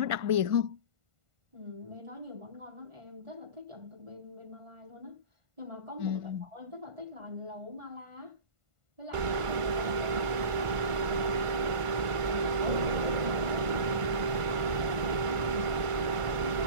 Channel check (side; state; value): left; late; 1.5 ms